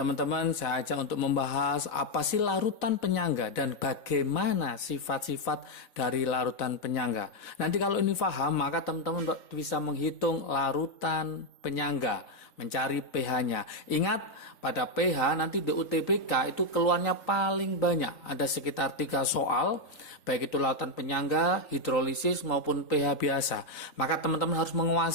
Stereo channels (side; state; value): right; late; 3.9 ms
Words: saya ajak untuk membahas apa sih larutan penyangga dan bagaimana sifat-sifat dari larutan penyangga. Nanti kalau ini paham, maka teman-teman bisa menghitung larutan penyangga, mencari pH-nya. Ingat, pada pH nanti di UTBK itu keluarnya paling banyak. Ada sekitar 3 soal, baik itu larutan penyangga, hidrolisis maupun pH biasa. Maka teman-teman harus